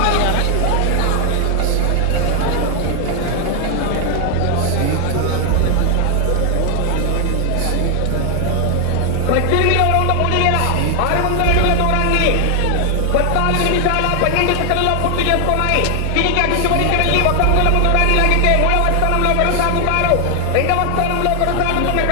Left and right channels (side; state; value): both; different; correlation 0.00